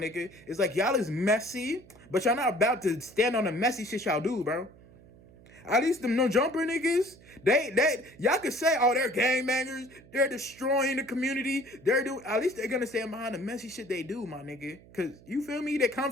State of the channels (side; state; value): right; noise; hum, 23 dB below the sound